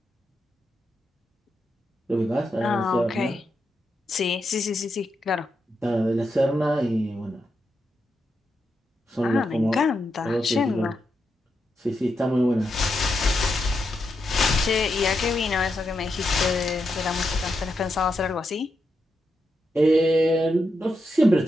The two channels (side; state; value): both; normal; correlation 0.85